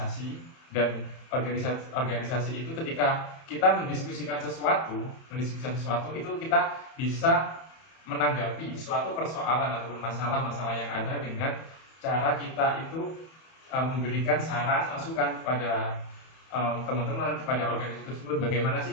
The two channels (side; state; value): right; late; 31 ms